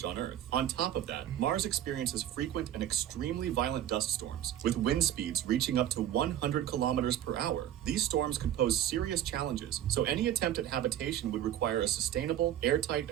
on Earth. On top of that, Mars experiences frequent and extremely violent dust storms, with wind speeds reaching up to 100 kilometers per hour. These storms could pose serious challenges, so any attempt at habitation would require a sustainable, airtight,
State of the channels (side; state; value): left; quieter; 11.4 dB